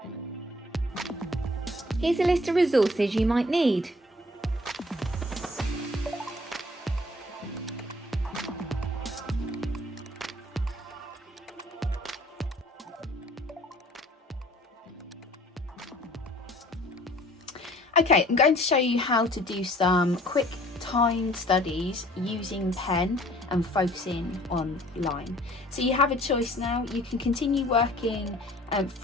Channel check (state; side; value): normal; both; correlation 0.54